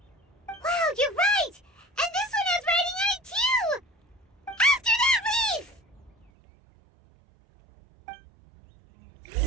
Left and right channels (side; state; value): left; drops out; at 6.3 s